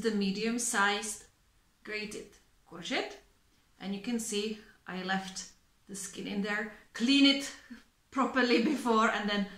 the medium-sized grated courgette, and you can see I left the skin in there. Clean it properly before, and then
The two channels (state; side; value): identical; both; correlation 1.00